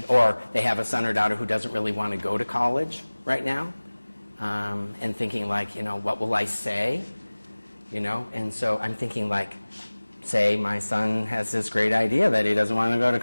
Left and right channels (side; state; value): both; inverted; correlation -1.00